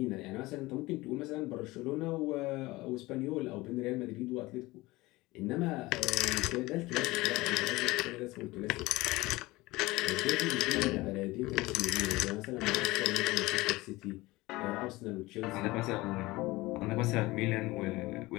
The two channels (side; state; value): right; quieter; 20.4 dB